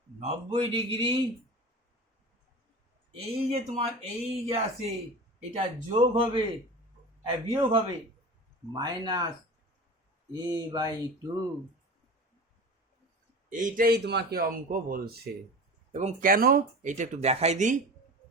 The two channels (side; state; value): both; normal; correlation 0.33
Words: 90 ডিগ্রি, এই যে তোমার এই যে আছে এটা যোগ হবে বিয়োগ হবে -a/2, এইটাই তোমাকে অঙ্ক বলছে। এবং কেন এইটা একটু দেখাই দিই,